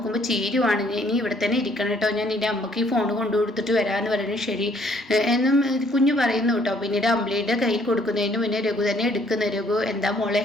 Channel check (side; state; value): both; normal; correlation 0.64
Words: ചീരുവാണ്. ഇനി ഇവിടെ തന്നെ ഇരിക്കണം കേട്ടോ, ഞാൻ നിൻ്റെ അമ്മയ്ക്ക് ഈ ഫോൺ കൊണ്ടു കൊടുത്തിട്ട് വരാമെന്ന് പറയുന്നത് ശരി എന്നും കുഞ്ഞു പറയുന്നു കേട്ടോ. പിന്നീട് അമ്പിളിയുടെ കയ്യിൽ കൊടുക്കുന്നതിന് മുന്നേ രഘു തന്നെ എടുക്കുന്നു. രഘു, എന്താ മോളെ